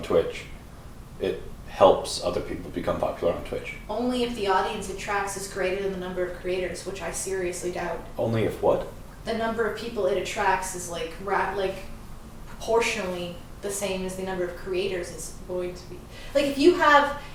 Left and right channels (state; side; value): identical; both; correlation 1.00